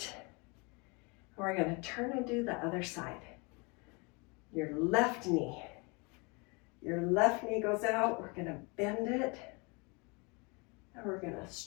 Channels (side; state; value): right; quieter; 29.9 dB